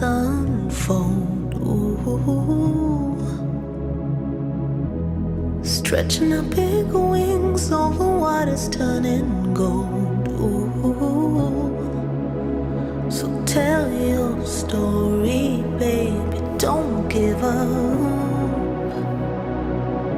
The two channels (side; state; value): both; identical; correlation 1.00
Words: unfold. Ooh. Stretching out big wings over waters turning gold. Ooh. So tell your story, baby, don't give up.